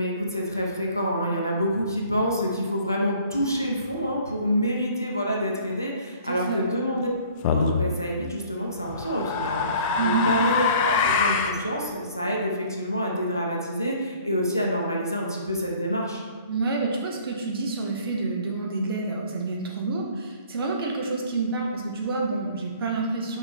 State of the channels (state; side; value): inverted; both; correlation -0.54